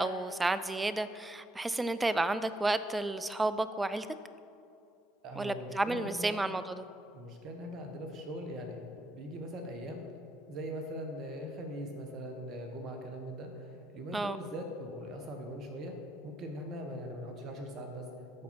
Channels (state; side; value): normal; both; correlation 0.78